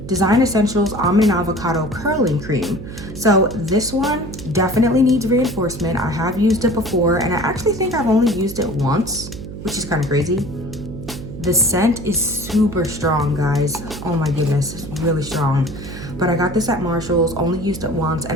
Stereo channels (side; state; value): right; noise; hum, 11 dB below the sound